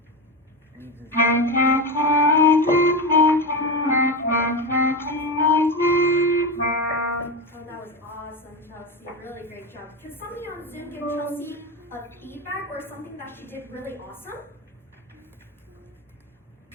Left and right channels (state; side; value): normal; both; correlation 0.17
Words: Oh, that was awesome, Chelsea. Really great job. Can somebody on Zoom give Chelsea a feedback or something that she did really awesome?